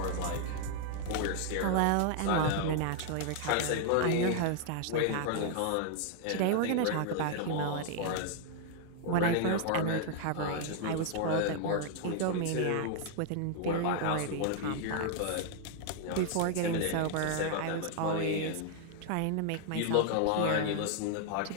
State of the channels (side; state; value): both; different; correlation 0.00